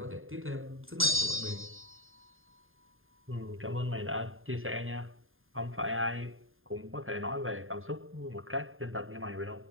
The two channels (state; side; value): late; left; 0.60 ms